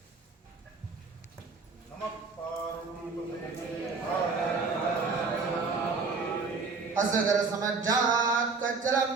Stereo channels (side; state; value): left; quieter; 4.4 dB